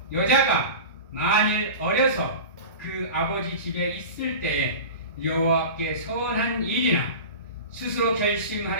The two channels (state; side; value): inverted; both; correlation -0.31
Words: 여자가 만일 어려서 그 아버지 집에 있을 때에 여호와께 서원한 일이나 스스로